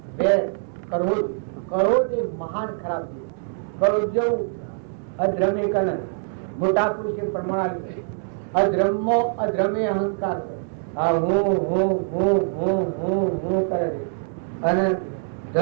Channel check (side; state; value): left; silent; 63 dB below the other